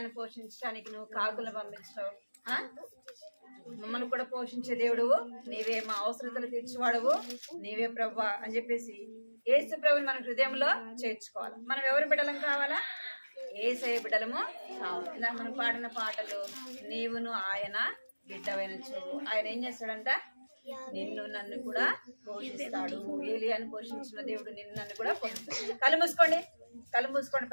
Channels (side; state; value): both; inverted; correlation -1.00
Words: పోషించడానికి నువ్వు కాకులను పంపించావు, మమ్మల్ని కూడా పోషించే దేవుడు నీవే, మా అవసరతలు తీర్చేవాడువు నీవే ప్రభువా అని చెప్పేసి యేసు ప్రభుని మన హృదయంలో చేర్చుకోవాలి. మనం ఎవరి బిడ్డలం కావాలా, యేసయ్య బిడ్డలము కావాలి. ఇలా మనం పాడిన పాటలు, నీవును ఆయన బిడ్డవైన చూడు. ఆయన ఏం చేస్తాడంట, నిన్ను నన్ను కూడా పోషిస్తాడు. ఏలియాను పోషించిన దేవుడు నిన్ను నన్ను కూడా పోషిస్తాడు. కళ్ళు మూసుకోండి,